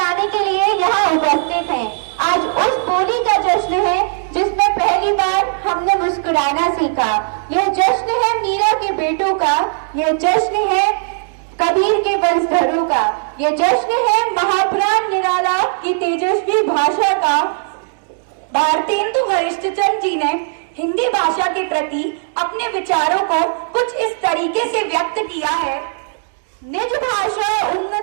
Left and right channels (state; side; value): silent; left; digital silence